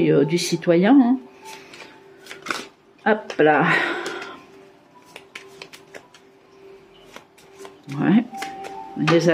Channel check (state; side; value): identical; both; correlation 1.00